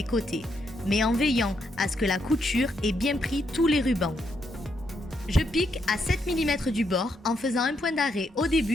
côtés, mais en veillant à ce que la couture ait bien pris tous les rubans. Je pique à 7 mm du bord en faisant un point d'arrêt au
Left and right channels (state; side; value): normal; both; correlation 0.78